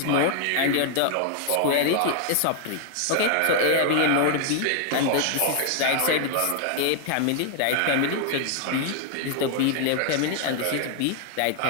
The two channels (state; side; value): different; both; correlation 0.00